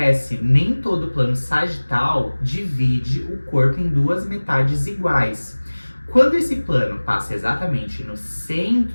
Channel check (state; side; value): inverted; both; correlation -1.00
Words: Nem todo plano sagital divide o corpo em duas metades iguais. Quando esse plano passa exatamente no